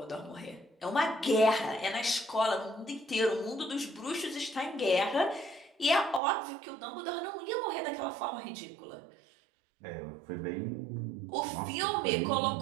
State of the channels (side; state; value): left; drops out; at 6.2 s